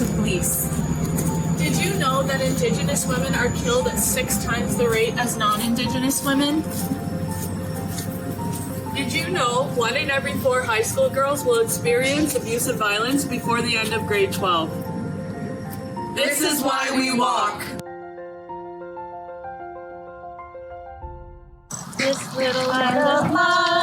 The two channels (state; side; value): identical; both; correlation 1.00